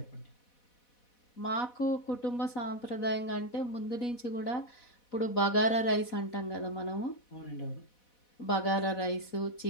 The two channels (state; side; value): late; right; 4.1 ms